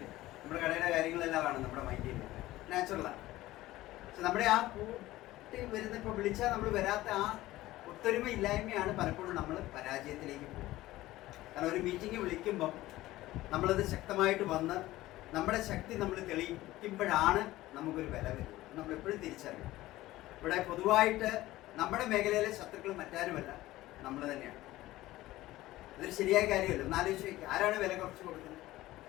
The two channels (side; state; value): right; quieter; 16.7 dB